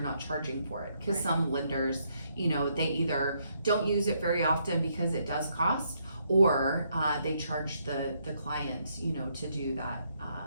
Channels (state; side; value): inverted; both; correlation -0.74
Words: not charging for it. Because Right. some lenders, they either don't use it very often because it does cost, or they charge the client, to do